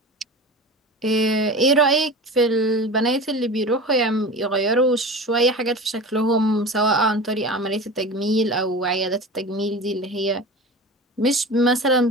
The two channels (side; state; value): both; normal; correlation 0.33